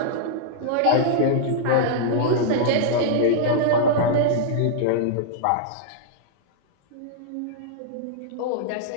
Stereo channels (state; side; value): different; both; correlation -0.02